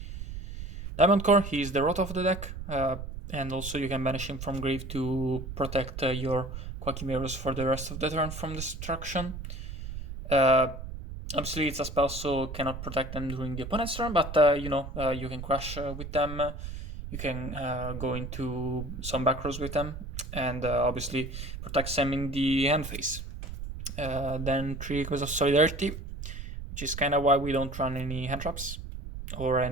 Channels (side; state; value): right; noise; rumble, 8 dB below the sound